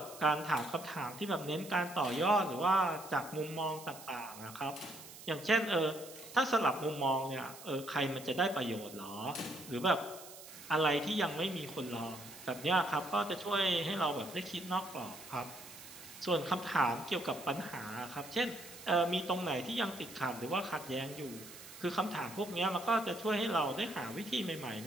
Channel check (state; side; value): noise; right; hiss, 16 dB below the sound